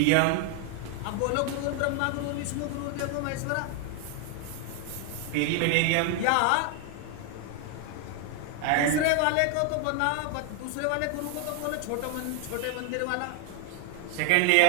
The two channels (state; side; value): different; both; correlation 0.01